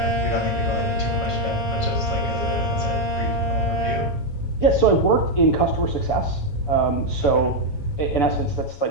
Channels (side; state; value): right; late; 7.2 ms